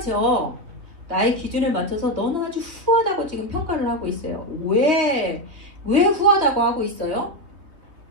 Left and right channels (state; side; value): late; left; 3.4 ms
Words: 나의 기준에 맞춰서 너는 아주 후하다고 지금 평가를 하고 있어요. 왜 후하다고 하고 있어요?